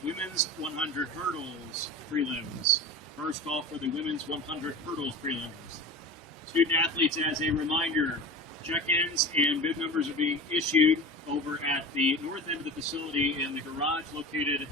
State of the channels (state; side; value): normal; both; correlation 0.31